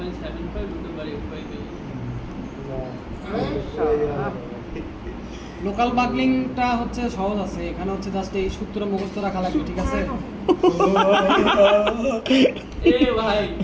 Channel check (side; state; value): both; identical; correlation 1.00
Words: লোকাল বাকলিংটা হচ্ছে সহজ আছে, এখানে হচ্ছে জাস্ট এই সূত্র মুখস্থ রাখা লাগবে, ঠিক আছে? এ ভাই